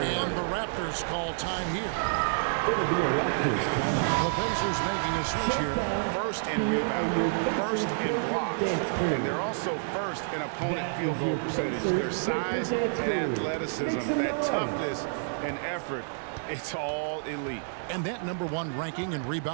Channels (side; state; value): left; silent; digital silence